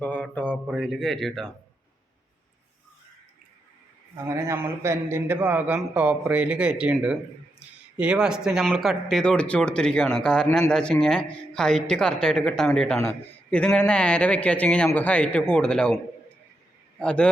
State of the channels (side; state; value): both; normal; correlation 0.84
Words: ടോപ്പ് റെയിൽ കയറ്റി കേട്ടോ. അങ്ങനെ നമ്മൾ ബെൻഡിൻ്റെ ഭാഗം ടോപ്പ് റെയിൽ കയറ്റിയിട്ടുണ്ട്. ഈ വസ്തു നമ്മൾ കട്ട് ചെയ്ത് ഒടിച്ചു കൊടുത്തിരിക്കുകയാണ്. കാരണം എന്താ വെച്ചെങ്കിൽ ഹൈറ്റ് കറക്റ്റായിട്ട് കിട്ടാൻ വേണ്ടിയിട്ടാണ്. ഇതിങ്ങനെ നേരെ വെക്കുക വെച്ചെങ്കിൽ നമുക്ക് ഹൈറ്റ് കൂടുതലാവും. അത്